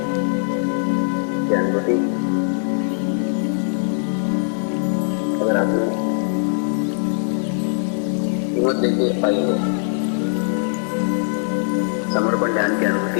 की अनुभूति अगर आपने हिम्मत देके पाई है, समर्पण ध्यान की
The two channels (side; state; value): right; silent; digital silence